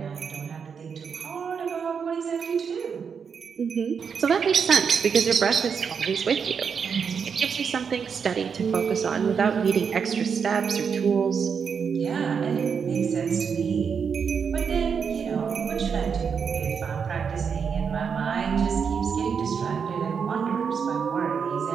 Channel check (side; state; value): left; quieter; 6.4 dB